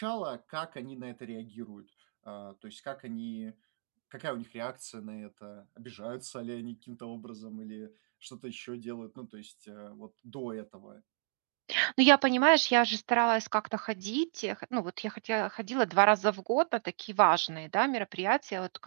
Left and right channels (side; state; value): left; silent; digital silence